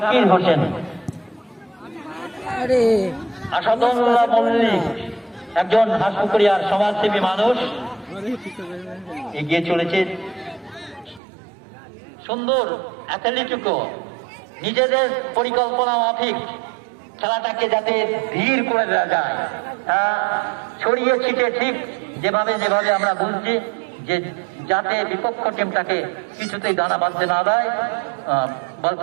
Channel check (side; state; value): left; drops out; at 11.2 s